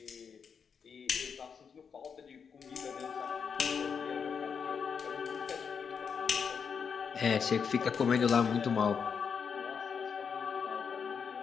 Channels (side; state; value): right; quieter; 6.4 dB